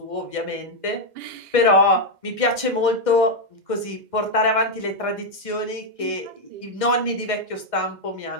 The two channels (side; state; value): left; late; 2.1 ms